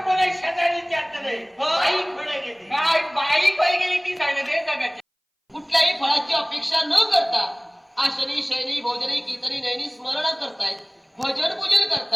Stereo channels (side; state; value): both; identical; correlation 1.00